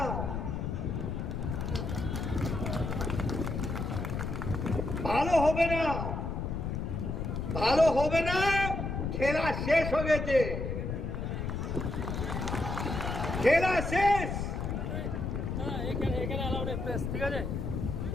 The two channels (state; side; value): noise; left; rumble, 3 dB below the sound